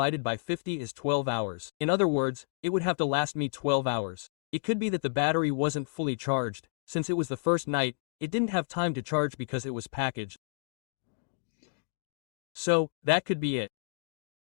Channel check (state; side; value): silent; right; digital silence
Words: by 50 is 12 hours. In other words, it would have to last me 12 hours. It could be that the battery wasn't fully charged. Since it was the first night, it didn't have time to charge because it was packaged. So, that could be it.